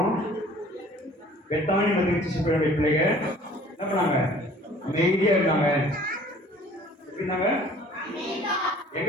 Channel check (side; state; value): both; normal; correlation 0.51